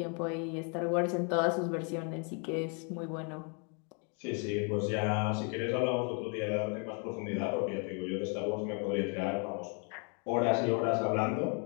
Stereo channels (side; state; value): right; quieter; 38.0 dB